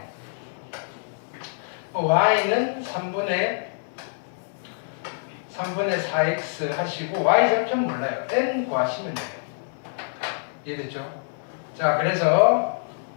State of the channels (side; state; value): right; silent; digital silence